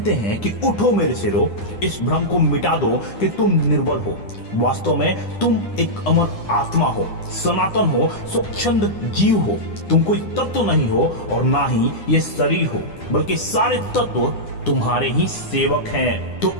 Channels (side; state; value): right; late; 9.8 ms